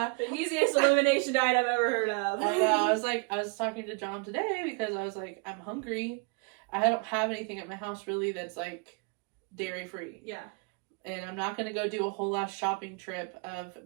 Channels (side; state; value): left; quieter; 32.4 dB